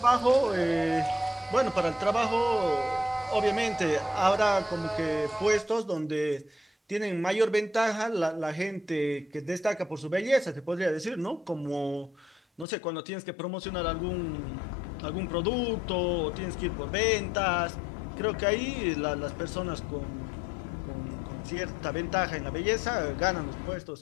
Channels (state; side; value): drops out; right; at 12.7 s